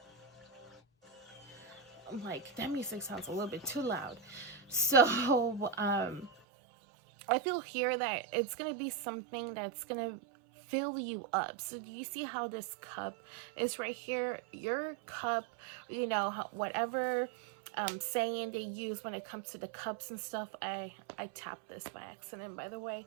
like, that music sounds a little bit too loud. So I feel here that it's gonna be something that's gonna fill you up. So do you see how this cup is right here? Your cup, whatever saying they use when it comes to the cups and stuff. I tapped this by accident, by the way.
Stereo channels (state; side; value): drops out; left; at 6.3 s